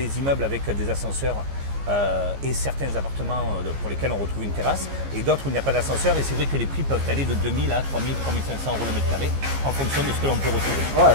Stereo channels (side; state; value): left; late; 15 ms